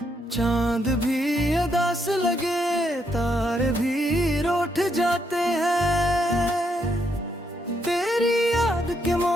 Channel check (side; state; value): both; normal; correlation 0.76